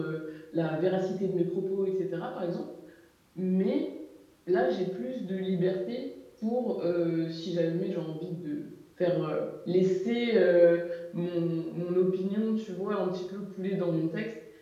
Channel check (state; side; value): identical; both; correlation 1.00